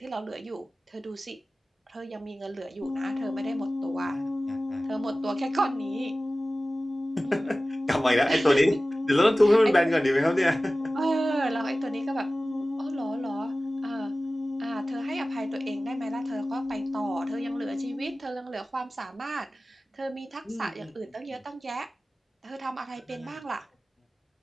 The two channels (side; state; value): both; normal; correlation 0.97